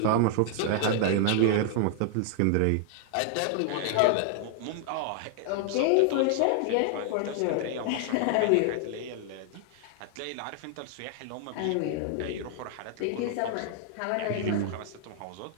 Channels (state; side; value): different; both; correlation 0.00